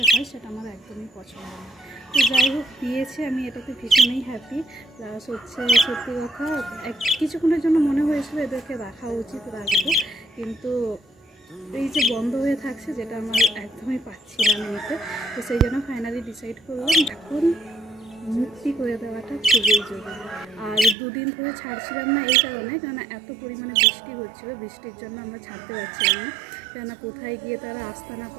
হয় সেটা আমার একদমই পছন্দ না। তো যাই হোক দিয়েছে, আমি এটাতে ভীষণই হ্যাপি। প্লাস হচ্ছে সত্যি কথা কিছুক্ষণের জন্য মনে হয়েছিল এদেরকে রাখা উচিত, রাখবো, কিন্তু এই যে বন্ধ হয়ে থাকছে যেটা আমার একদমই পাচ্ছিলাম নিতে। তো সেই জন্য ফাইনালি ডিসাইড করলাম এখন মুক্তি করে দেওয়াটা খুবই জরুরি। আর দুদিন ধরে ছাড়ছিলাম না এই কারণে, কেননা এত পরিমাণে বৃষ্টি হচ্ছিলো, বৃষ্টির জন্য আমরা ছাড়তে পারছিলাম না, কেননা কোথায় গিয়ে তারা আস্তানা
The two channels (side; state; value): left; drops out; at 21.0 s